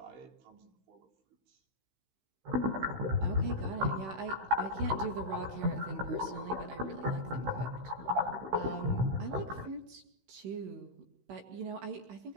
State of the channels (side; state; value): left; late; 16 ms